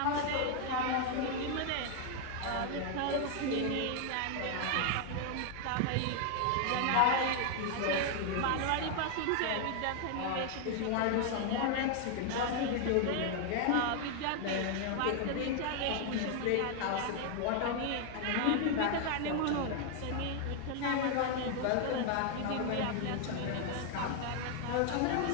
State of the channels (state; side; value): different; both; correlation 0.00